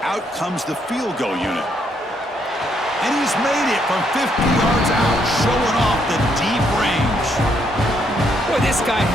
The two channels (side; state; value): both; normal; correlation 0.73